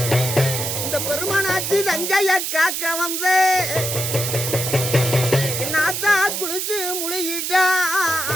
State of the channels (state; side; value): noise; right; hiss, 2 dB below the sound